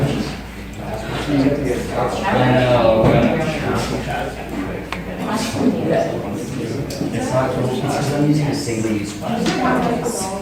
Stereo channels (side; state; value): both; identical; correlation 1.00